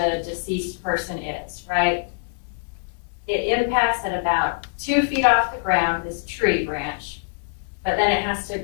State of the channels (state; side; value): silent; right; digital silence